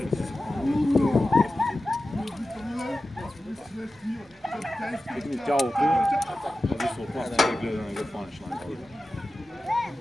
не си се пълни. Тегни тялото, зависи от нас, да гледа да не го хванеш на това.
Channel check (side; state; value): both; normal; correlation 0.94